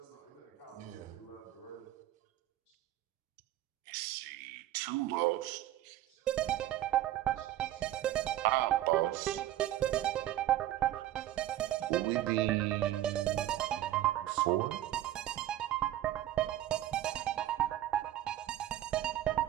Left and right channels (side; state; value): left; quieter; 13.6 dB